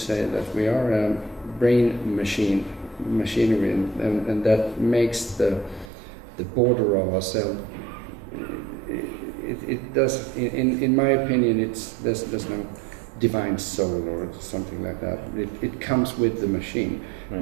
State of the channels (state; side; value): drops out; left; at 5.9 s